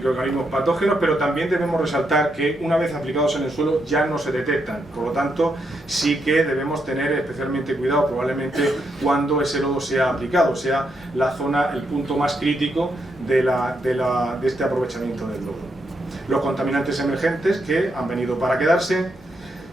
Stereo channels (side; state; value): both; normal; correlation 0.80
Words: patógenos, pero también debemos resaltar que una vez aplicados en el suelo ya no se detectan. Por lo tanto, sí que debemos tener especialmente cuidado probablemente cuando ese lodo sea aplicado, sea la zona, el punto más crítico de este aprovechamiento del lodo. Los contaminantes emergentes, que han venido para quedarse,